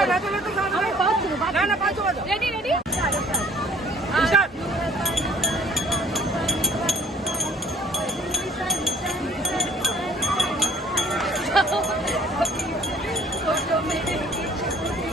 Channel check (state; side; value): normal; both; correlation 0.53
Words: না পাঁচ রেডি রেডি